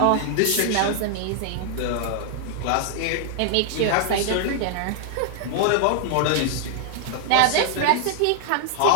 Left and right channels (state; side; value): different; both; correlation 0.00